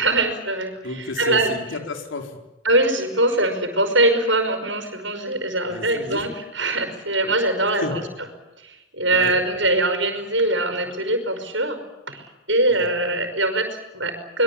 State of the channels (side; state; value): both; normal; correlation -0.17